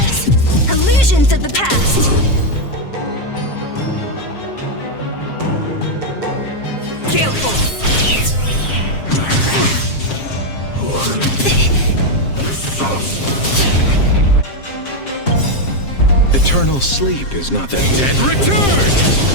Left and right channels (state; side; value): late; right; 7.5 ms